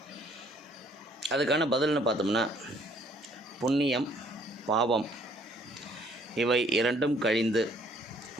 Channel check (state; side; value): normal; both; correlation 0.62